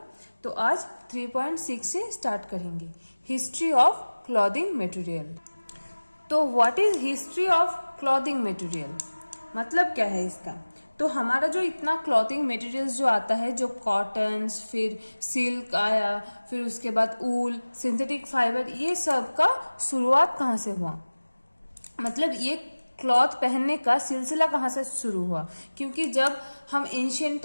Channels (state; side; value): inverted; both; correlation -1.00